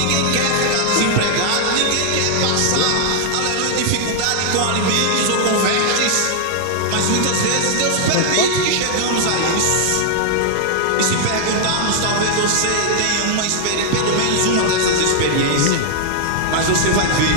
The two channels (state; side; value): different; both; correlation 0.00